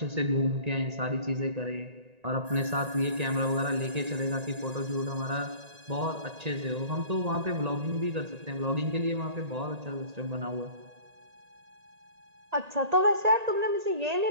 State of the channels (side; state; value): left; late; 1.8 ms